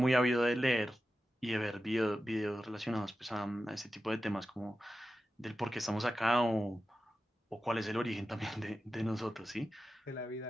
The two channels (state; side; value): normal; both; correlation 0.92